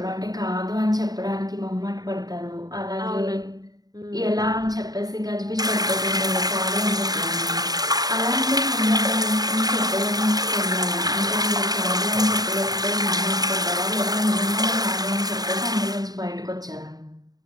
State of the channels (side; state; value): left; late; 0.18 ms